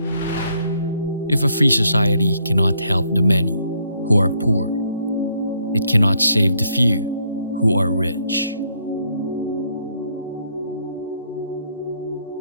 If a free society cannot help the many who are poor, it cannot save the few who are rich.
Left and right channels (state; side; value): inverted; both; correlation -0.71